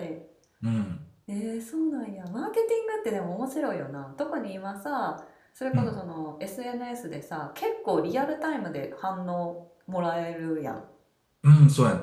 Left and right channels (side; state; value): both; identical; correlation 1.00